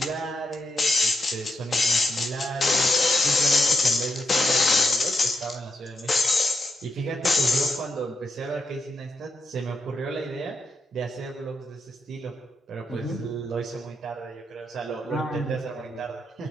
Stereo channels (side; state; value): both; normal; correlation 0.82